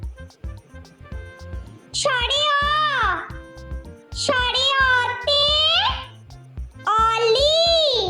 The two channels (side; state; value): both; identical; correlation 1.00